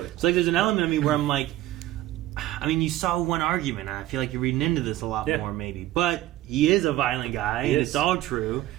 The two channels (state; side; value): quieter; left; 15.0 dB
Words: So like, there's an element of me where I'm like, I mean, you saw one argument, and I feel like you're reading into this a lot more, maybe. But he is a violent guy, and it's all true.